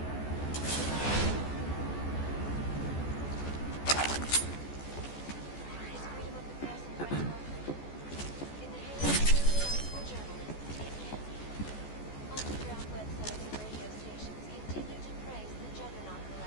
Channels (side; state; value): right; late; 14 ms